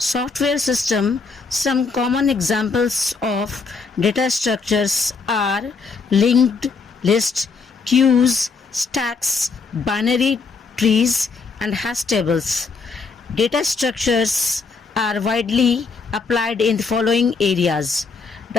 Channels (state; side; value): quieter; right; 4.6 dB